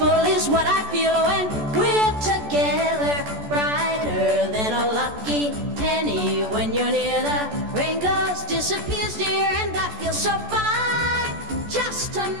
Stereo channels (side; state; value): left; late; 14 ms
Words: is what I feel when we're together. Brighter than a lucky penny when you're near. The rain goes, disappears, dear, and I feel so fine just to